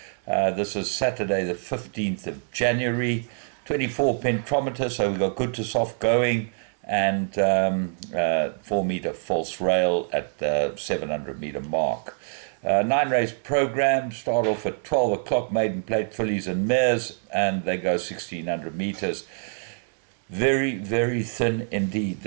This is Saturday, the 15th of January. 24 pentometer, so we've got good to soft going, and 4 meter false rail at the 700 meter mark. 9 race program, start off at 12 o'clock, maiden plate fillies and mares, and they go 1600 meters. Very, very thin indeed.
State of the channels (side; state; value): left; silent; digital silence